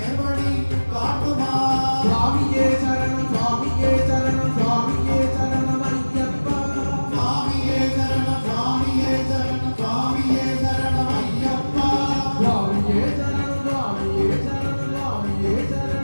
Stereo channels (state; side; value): inverted; both; correlation -1.00